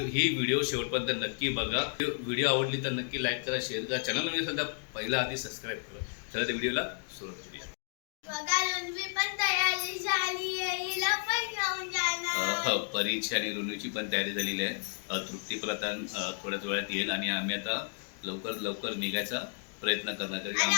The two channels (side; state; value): right; silent; 56 dB below the other